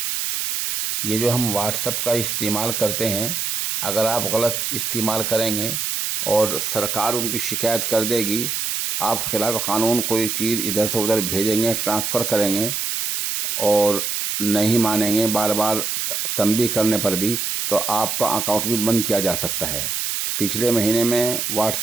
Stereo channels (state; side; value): noise; right; hiss, 1 dB below the sound